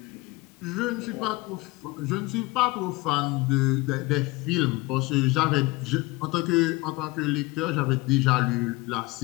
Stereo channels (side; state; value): right; quieter; 22.4 dB